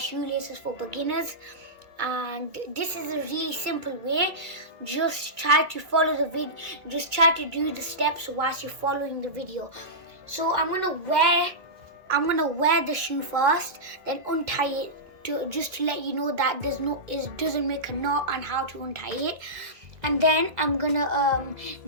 for beginners. And this is a really simple way. Just try to follow the video, just try to do the steps whilst you're following the video. So I'm going to wear the shoe first, then untie it. Just to let you know that it doesn't make a knot and how to untie it, and then I'm gonna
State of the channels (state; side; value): late; left; 2.1 ms